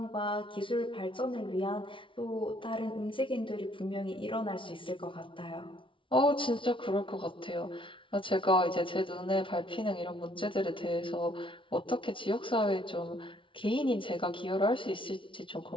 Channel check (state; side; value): late; right; 0.25 ms